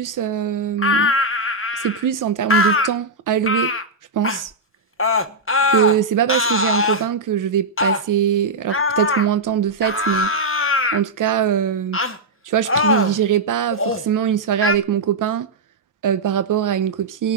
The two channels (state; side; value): quieter; left; 3.2 dB